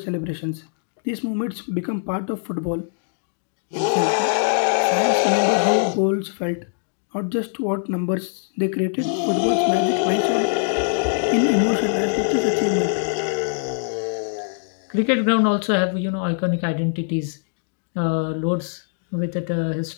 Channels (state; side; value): silent; right; digital silence